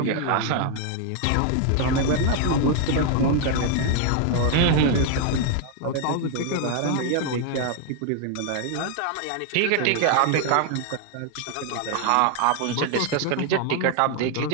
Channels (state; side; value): different; both; correlation 0.00